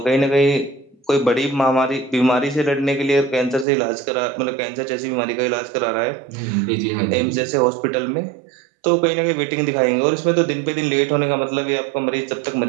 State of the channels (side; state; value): left; drops out; at 3.7 s